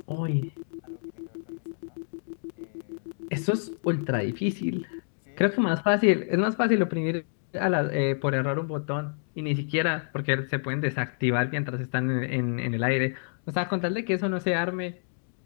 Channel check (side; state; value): right; silent; digital silence